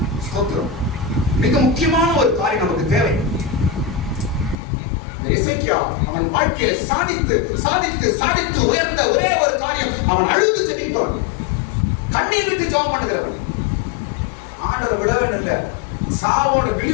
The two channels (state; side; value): drops out; right; at 4.5 s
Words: ஸ்தோத்திரம். மிக முக்கியமான ஒரு காரியம் நமக்கு தேவை. எசேக்கியா அவன் வாழ்க்கையில சாதித்து சாதித்து சாதித்து உயர்ந்த ஒரே ஒரு காரியம், அவன் அழுது ஜெபிப்பான், கண்ணீர் விட்டு ஜெபம் பண்ணுகிறவன். ஆண்டவர் விடவே இல்லை. சாவோட